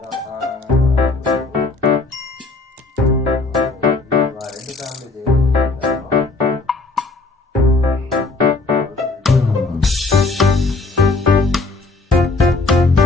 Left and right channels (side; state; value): right; quieter; 3.5 dB